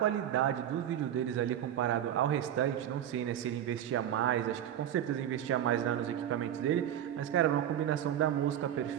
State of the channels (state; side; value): quieter; left; 10.6 dB